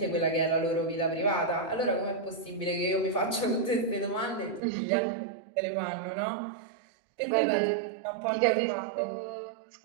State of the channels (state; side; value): drops out; left; at 4.6 s